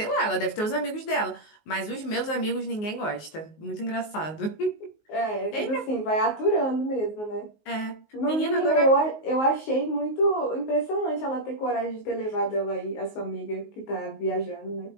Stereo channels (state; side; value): late; right; 19 ms